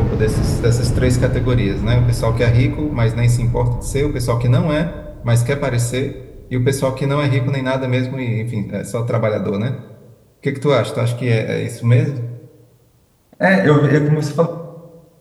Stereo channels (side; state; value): both; identical; correlation 1.00